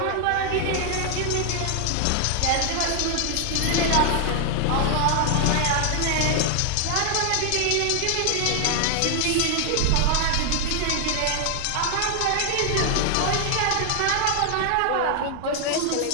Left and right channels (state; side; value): different; both; correlation 0.00